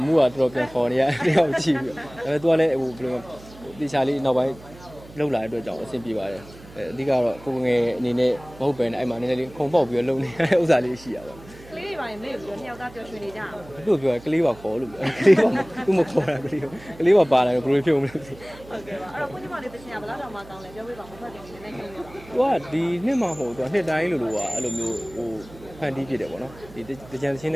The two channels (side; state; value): right; noise; hum, 20 dB below the sound